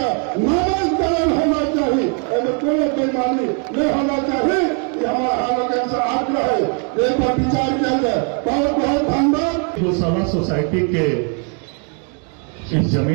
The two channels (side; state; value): left; quieter; 39.0 dB